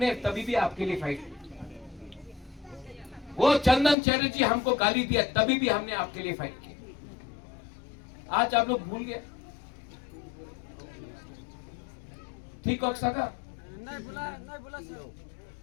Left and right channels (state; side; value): drops out; right; at 4.0 s